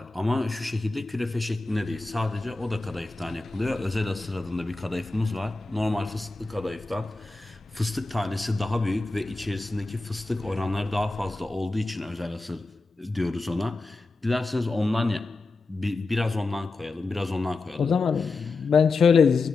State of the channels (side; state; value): right; quieter; 3.6 dB